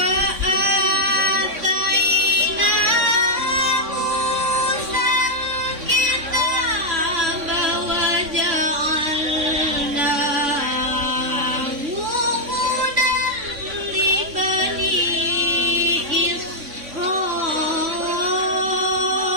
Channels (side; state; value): left; late; 3.5 ms